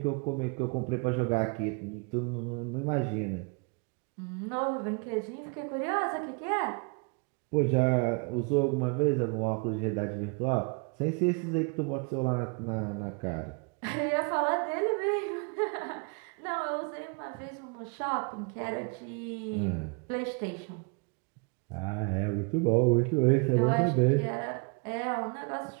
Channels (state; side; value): quieter; left; 33.3 dB